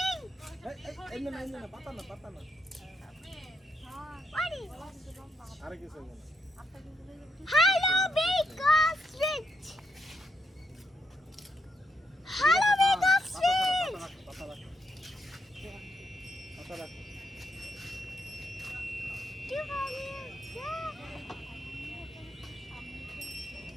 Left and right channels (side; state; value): both; normal; correlation 0.78